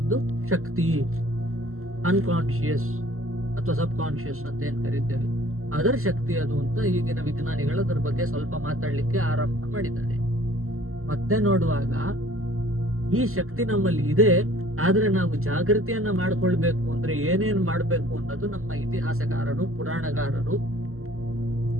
ಶಕ್ತಿ, ಅನ್ಕಾನ್ಶಿಯಸ್ ಅಥವಾ ಸಬ್ ಕಾನ್ಶಿಯಸ್ ಅಂತ ಏನ್ ಕರೀತೇವೆ, ಅದರ ಶಕ್ತಿ ಅದು ಅಂತ ಈಗಿನ ವಿಜ್ಞಾನಿಗಳು ಅದರ ಬಗ್ಗೆ ಸ್ವಲ್ಪ ಮಾತಾಡ್ಲಿಕ್ಕೆ ಆರಂಭ ಮಾಡಿದ್ದಾರೆ. ಮತ್ತೆ ನೋಡುವಾಗ ಈ ಶಕ್ತಿ ನಮ್ಮಲ್ಲಿ ಇದೆ, ಆದ್ರೆ ನಾವು ಜಾಗೃತಿಯನ್ನ ಮಾಡ್ಕೊಳ್ಬೇಕು ಅಂದ್ರೆ ಏನೇನ್ ಮಾಡ್ಬೇಕು ಅನ್ನೋದು ನಮ್ಮ ಇತಿಹಾಸಕಾರರು, ಪುರಾಣಗಾರರು,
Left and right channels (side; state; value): left; late; 0.62 ms